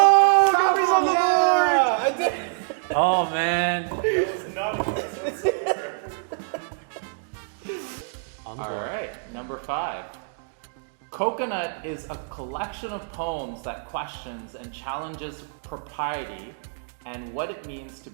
Gabby's on the yeah, I did. Oh man. All right, number 5. Coconut is a collection of poems that questions and challenges propriety and what it means to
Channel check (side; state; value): left; silent; digital silence